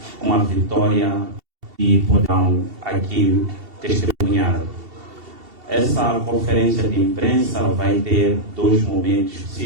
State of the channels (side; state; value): left; late; 2.7 ms